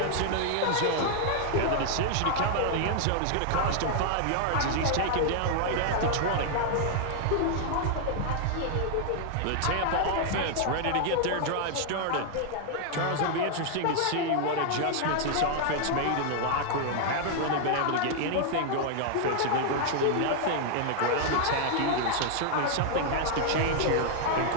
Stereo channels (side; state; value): both; different; correlation 0.00